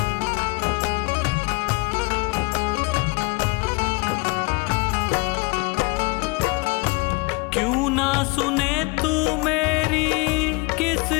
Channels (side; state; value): right; quieter; 27.2 dB